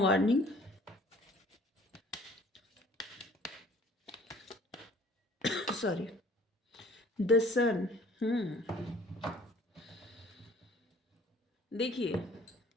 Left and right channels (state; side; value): normal; both; correlation 0.54